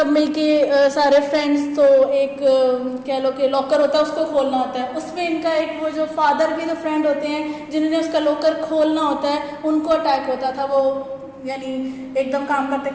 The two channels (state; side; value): identical; both; correlation 1.00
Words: मिलके सारे फ्रेंड्स, तो एक कह लो कि लॉकर होता है उसको खोलना होता है, उसमें इनका एक वो जो फादर के जो फ्रेंड होते हैं जिन्होंने उसका लॉकर खोलना होता है उनको अटैक होता था, वो यानी एकदम काम करते